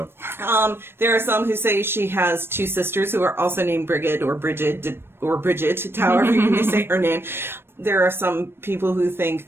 There are some who say she has 2 sisters who are also named Brigid or Brigid, however you may say her name. There are some people who think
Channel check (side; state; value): left; late; 0.11 ms